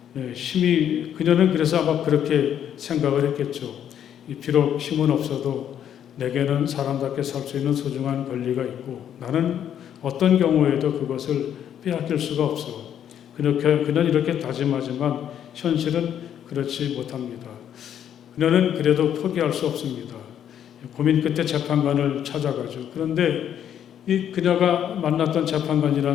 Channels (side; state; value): right; quieter; 9.6 dB